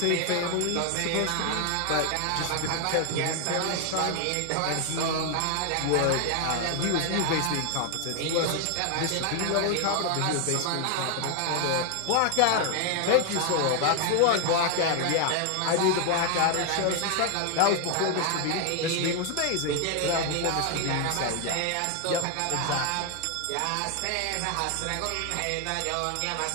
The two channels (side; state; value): both; different; correlation 0.00